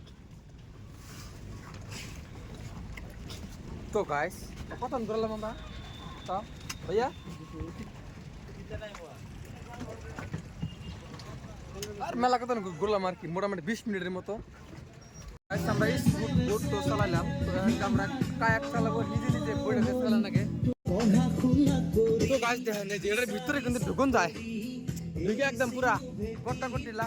তো গাইস কত ধরলাম আমরা তো ভাইয়া আর মেলা কত ঘুরলাম আর কি মোটামুটি 20 মিনিটের মতো আমরা বোট তো চালাইলাম আমরা কায়াক চালাবো নিজে নিজে বইটাকে চালান আগে তো গাছ দেখেন যে এটার ভিতরে কিন্তু ঢুকুন যায় ঢুকে একদম পুরা গট্টা গট্টি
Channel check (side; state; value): both; identical; correlation 1.00